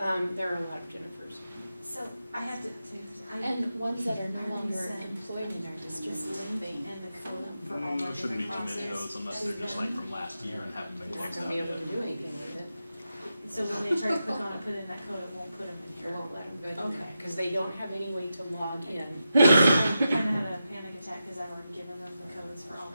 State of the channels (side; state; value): both; inverted; correlation -0.89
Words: there are a lot of Jennifers. So I have to, And ones that are no I longer sent employed in our just district. link and the code for all my There shouldn't be different too many of classes. those unless they're just like from last year and haven't been You're not closed gonna out be able yet. to do anything with it. So when they try to click on and put in that code, it won't put them in You here. won't let them go in there Okay. because they don't have any way to log in. I kinda had a panic attack because I've already given them the codes for all